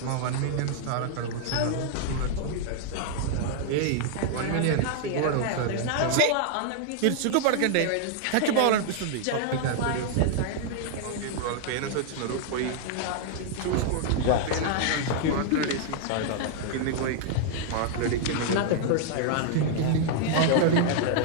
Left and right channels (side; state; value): both; different; correlation -0.01